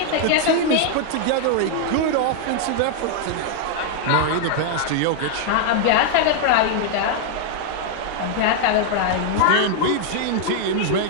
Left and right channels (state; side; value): different; both; correlation -0.01